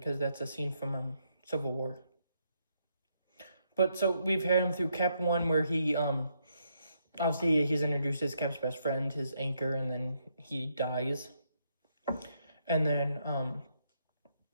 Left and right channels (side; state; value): both; inverted; correlation -0.76